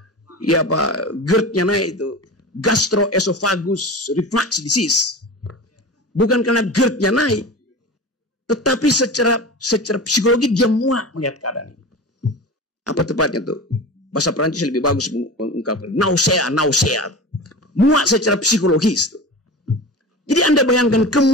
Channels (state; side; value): normal; both; correlation 0.31